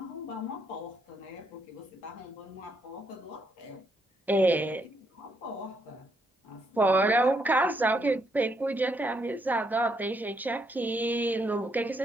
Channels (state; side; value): normal; both; correlation 0.75